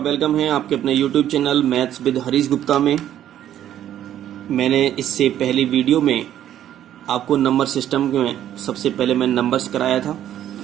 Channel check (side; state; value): left; quieter; 11.3 dB